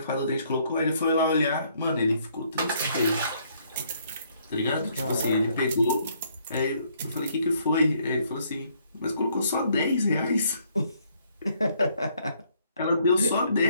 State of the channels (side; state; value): both; inverted; correlation -0.68